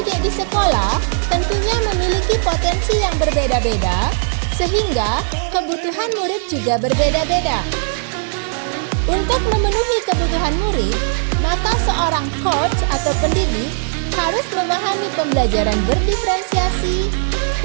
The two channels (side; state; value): left; silent; 67 dB below the other